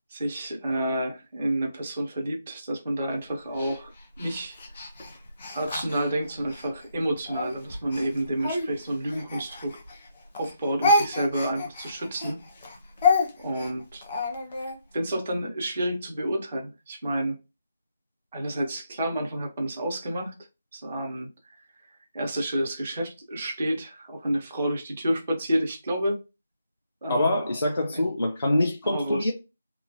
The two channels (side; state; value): both; inverted; correlation -0.79